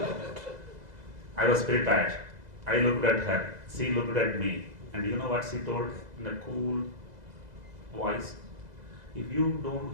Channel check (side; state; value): left; late; 2.0 ms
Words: I was prepared. I looked at her. She looked at me. And you know what she told in a cool voice? if you don't